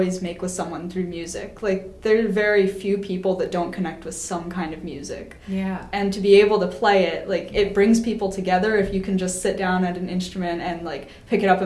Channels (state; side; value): identical; both; correlation 1.00